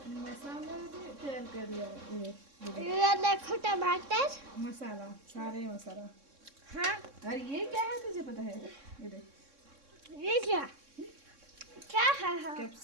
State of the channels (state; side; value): late; left; 3.6 ms